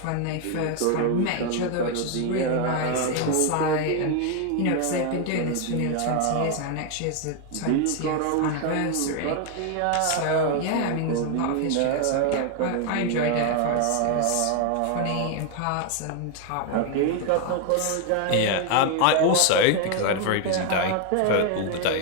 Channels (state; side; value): different; both; correlation 0.01